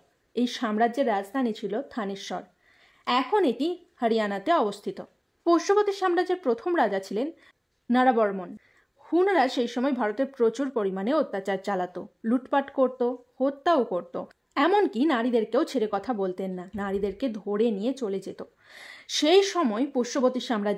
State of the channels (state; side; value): identical; both; correlation 1.00